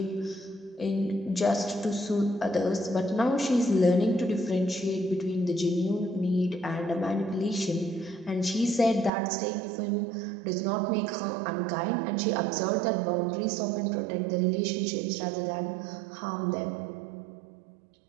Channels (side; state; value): left; drops out; at 9.1 s